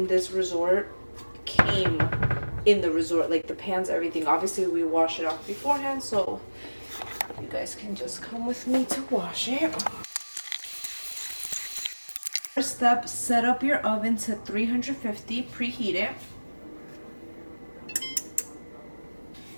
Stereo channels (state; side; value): inverted; both; correlation -1.00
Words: this resort came in the resort, like the pans, everything. Obviously we wash it off beforehand, so you guys can just come with me to wash it. First step, set up your oven to 350, preheat it.